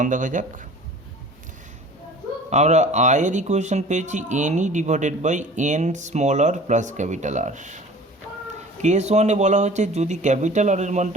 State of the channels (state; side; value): normal; both; correlation 0.44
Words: দেখা যাক। আমরা আয়ের ইকুয়েশন পেয়েছি NE divided by N small R plus capital R. Case 1-এ বলা হচ্ছে যদি ক্যাপিটাল আর এর